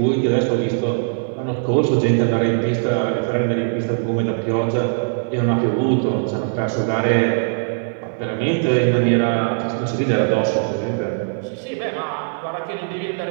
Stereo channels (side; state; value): left; silent; digital silence